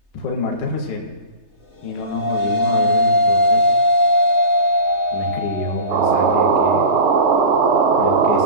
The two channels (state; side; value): late; left; 3.3 ms